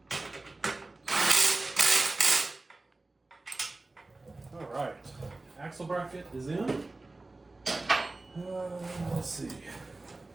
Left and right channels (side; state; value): left; quieter; 3.2 dB